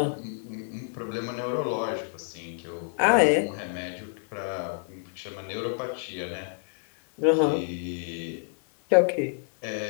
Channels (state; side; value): silent; right; digital silence